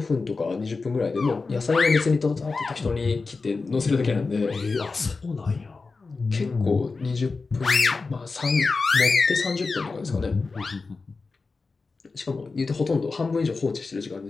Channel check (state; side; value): quieter; right; 4.1 dB